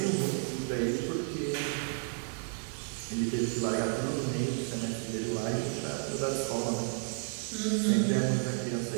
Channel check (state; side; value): silent; left; 56 dB below the other